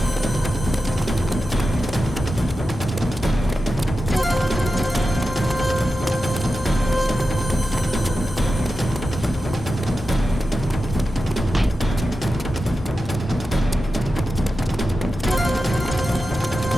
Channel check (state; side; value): normal; both; correlation 0.92